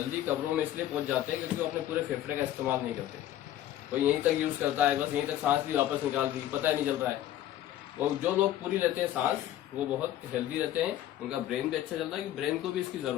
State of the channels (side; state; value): right; quieter; 12.8 dB